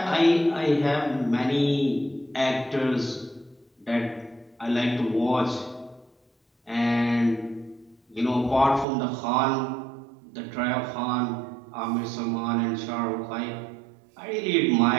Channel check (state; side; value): drops out; left; at 8.8 s